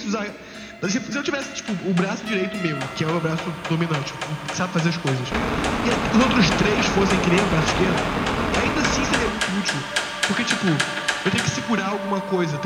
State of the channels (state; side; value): identical; both; correlation 1.00